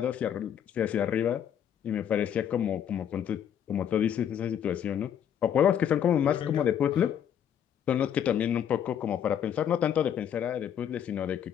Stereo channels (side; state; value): right; quieter; 9.2 dB